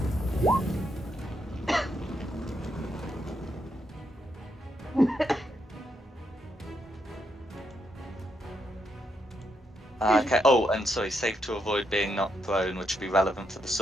Okay. Oh, and sorry, safe to avoid being knocked prone, which would be relevant for the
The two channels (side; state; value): both; normal; correlation 0.79